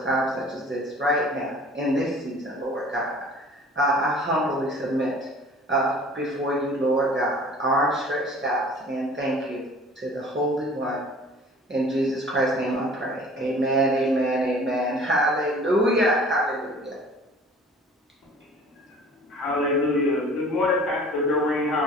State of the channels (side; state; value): both; normal; correlation 0.48